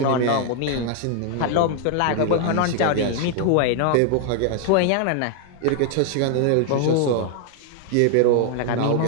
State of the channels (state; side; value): different; both; correlation 0.00